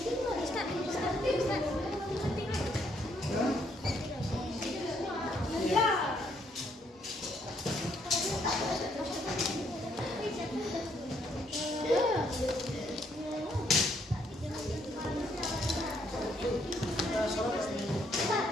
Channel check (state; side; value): normal; both; correlation 0.70